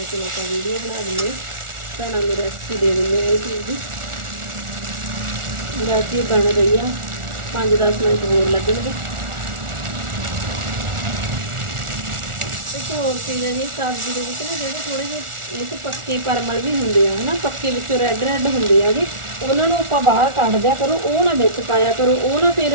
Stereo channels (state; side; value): late; left; 1.4 ms